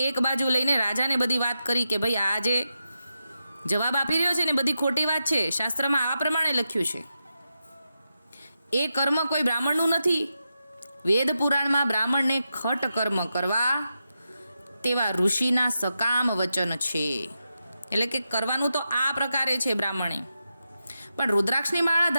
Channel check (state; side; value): inverted; both; correlation -0.88